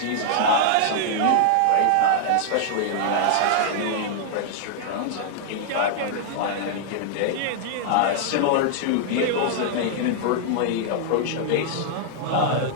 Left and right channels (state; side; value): different; both; correlation -0.01